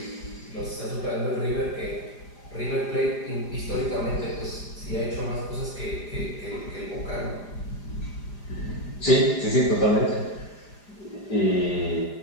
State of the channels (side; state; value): right; late; 4.9 ms